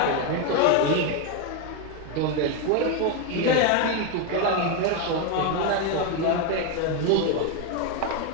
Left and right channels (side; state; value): both; different; correlation 0.02